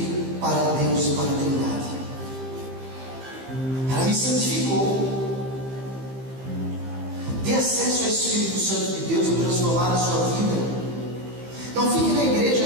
para Deus e para a Trindade. Ela me santificou. Dê acesso ao Espírito Santo de Deus para transformar a sua vida. Não fique na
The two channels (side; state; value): left; late; 15 ms